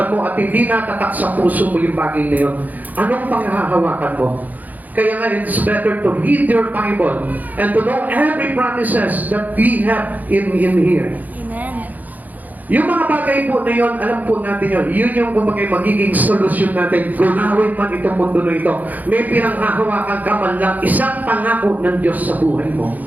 mo at hindi natatak sa puso mo yung bagay na yun, anong panghahawakan mo? Kaya nga, it's better to read your Bible and to know every promises that we have in here. Amen. Yung mga bagay po na yun, alam po natin yun. Yun yung kumagay magiging solusyon natin. Gunawin man itong mundo na ito. May pinanghahawakan ka man lang isang pangako ng Diyos sa buhay mo.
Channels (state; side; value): late; left; 0.081 ms